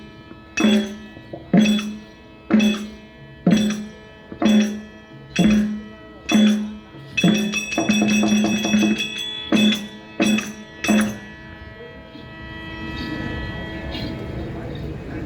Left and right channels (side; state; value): both; identical; correlation 1.00